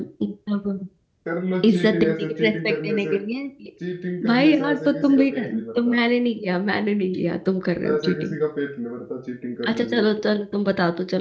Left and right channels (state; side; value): identical; both; correlation 1.00